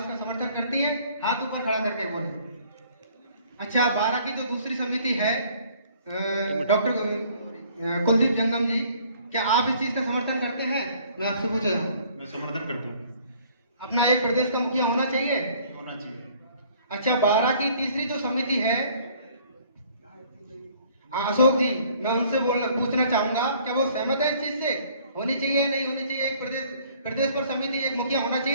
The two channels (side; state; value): both; inverted; correlation -0.58